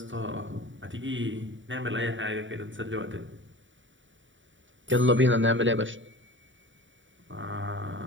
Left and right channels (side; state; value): left; late; 0.55 ms